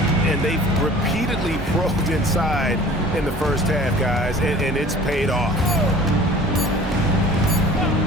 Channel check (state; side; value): normal; both; correlation 0.45